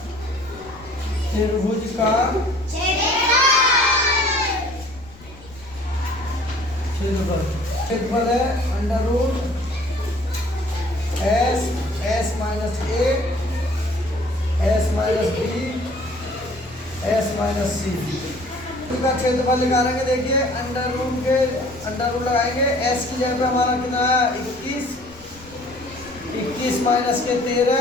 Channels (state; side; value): noise; left; rumble, 22 dB below the sound